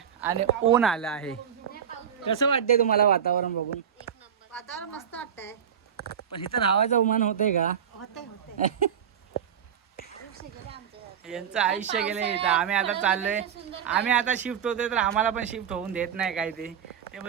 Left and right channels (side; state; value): left; quieter; 8.4 dB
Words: आणि ऊन आलं आहे. कसं वाटतंय तुम्हाला वातावरण बघून? वातावरण मस्त वाटतंय. पण इथं राहायचं उमान होतंय का? होतंय यांचं आयुष्य गेलंय इथं. आम्ही आता चाललोय. आम्ही आता शिफ्ट होतोय तर आम्हाला पण शिफ्ट होऊन देत नाही काय ते